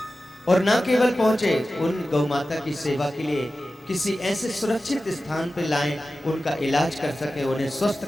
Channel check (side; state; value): both; normal; correlation 0.94